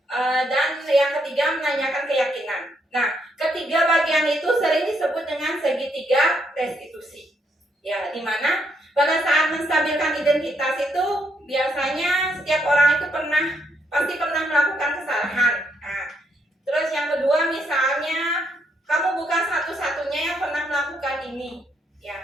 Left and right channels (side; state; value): both; normal; correlation 0.75